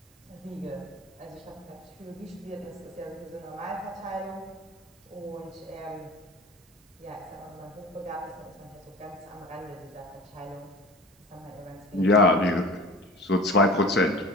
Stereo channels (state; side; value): noise; right; hiss, 30 dB below the sound